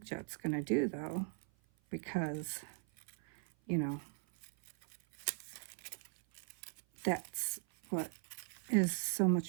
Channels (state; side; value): silent; left; 51 dB below the other